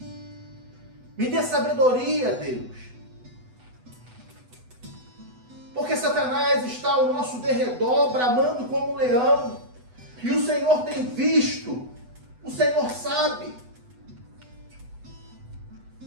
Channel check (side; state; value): left; late; 8.0 ms